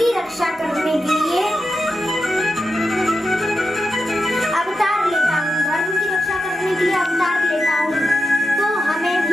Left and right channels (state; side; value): normal; both; correlation 0.89